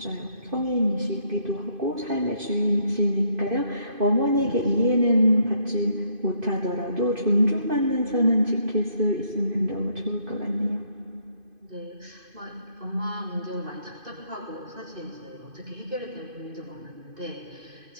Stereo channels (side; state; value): left; late; 2.5 ms